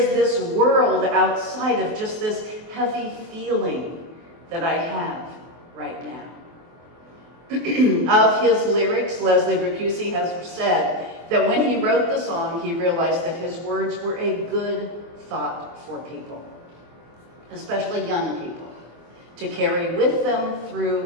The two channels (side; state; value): left; late; 24 ms